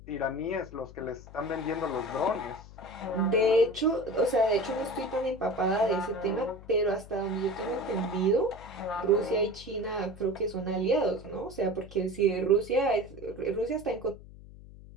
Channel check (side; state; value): left; noise; hum, 18 dB below the sound